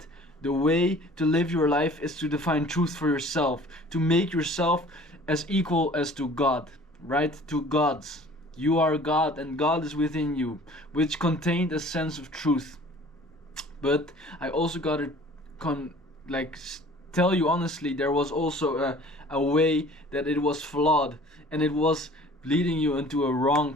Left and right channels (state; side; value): normal; both; correlation 0.49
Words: the way to live your life is to define truth for yourself, to make yourself as equal as to God, right? To God's. You are God and God is within you, which contained a sense of truth. But I also gotta tell you honestly, there was also a way that it was flawed, and it was leading you into a wrong